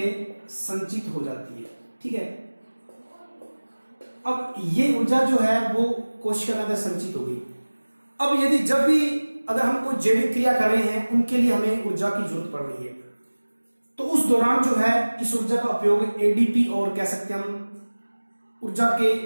संचित हो जाती है। ठीक है, अब ये ऊर्जा जो है वो कोशिका के अंदर संचित हो गई। अब यदि जब भी अगर हम कोई जैविक क्रिया कर रहे हैं उनके लिए हमें ऊर्जा की जरूरत पड़ रही है, तो उस दौरान जो है इस ऊर्जा का उपयोग एडीपी और कह सकते हैं हम ऊर्जा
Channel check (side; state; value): both; inverted; correlation -1.00